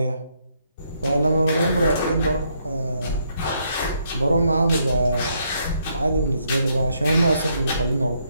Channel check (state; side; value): inverted; both; correlation -0.74